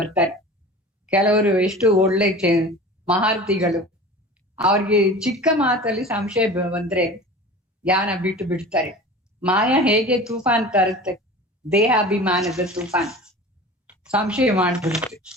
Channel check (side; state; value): both; normal; correlation 0.37